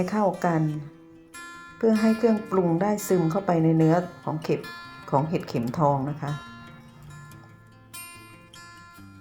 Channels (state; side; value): identical; both; correlation 1.00